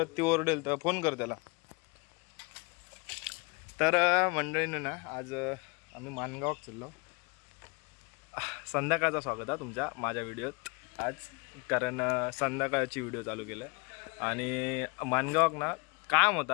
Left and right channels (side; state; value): right; quieter; 30.5 dB